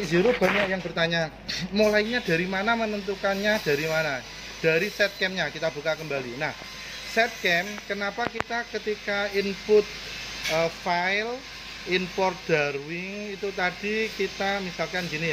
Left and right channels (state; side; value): identical; both; correlation 1.00